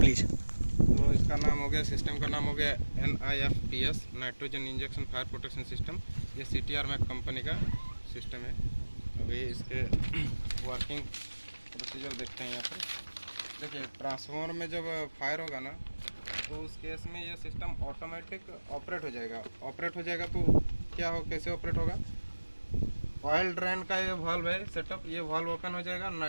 तो इसका नाम हो गया, सिस्टम का नाम हो गया NIFPS, nitrogen injection fire protection system. ये CTR मैक कंपनी का सिस्टम है। अभी इसके वर्किंग प्रोसीजर देखते हैं। यहाँ पर देखिए, ट्रांसफार्मर में जब फायर होगा ना, तो उस केस में ये सिस्टम ऑटोमेटिक ऑपरेट हो जाएगा। तो क्या हो, कैसे ऑपरेट होगा? ऑयल ड्रेन का ये वाल्व है सेटअप, ये वाल्व ओपन हो जाएगा।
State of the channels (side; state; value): both; inverted; correlation -1.00